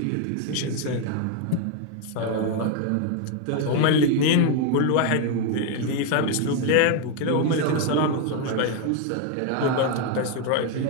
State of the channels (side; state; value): both; different; correlation 0.01